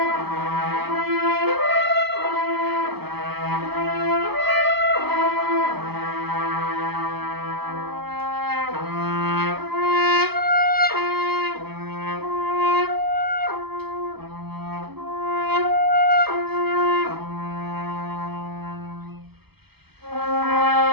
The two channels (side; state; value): left; late; 0.97 ms